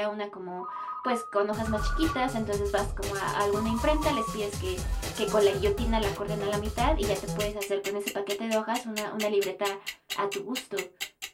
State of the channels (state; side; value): identical; both; correlation 1.00